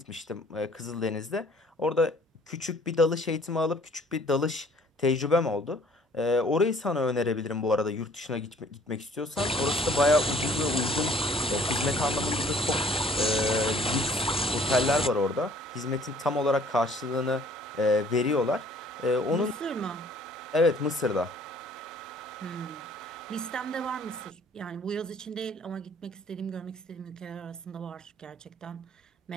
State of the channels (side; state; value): both; normal; correlation 0.56